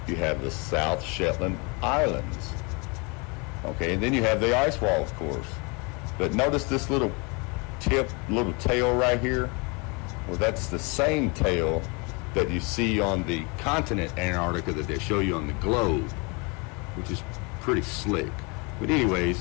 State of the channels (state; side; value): quieter; right; 30.4 dB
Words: you have the South Shetland Islands. Okay, and then you have the ice wall, of course. But notice this little tail right here. Well, that's the same tail that you see on the continent Antarctica that they show you on the globe, which is pretty slick. But